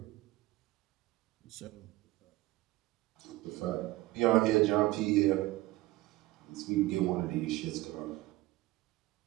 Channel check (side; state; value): left; quieter; 18.4 dB